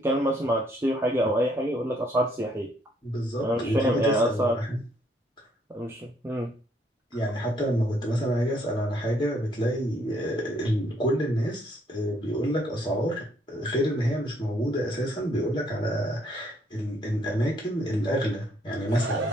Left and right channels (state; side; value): normal; both; correlation 0.68